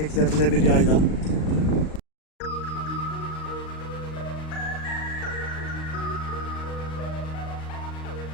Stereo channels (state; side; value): late; right; 38 ms